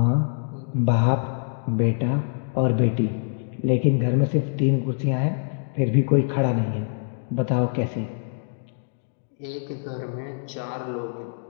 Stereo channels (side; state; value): right; silent; digital silence